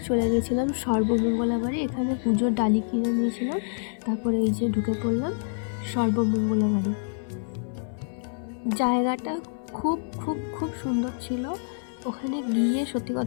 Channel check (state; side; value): silent; right; digital silence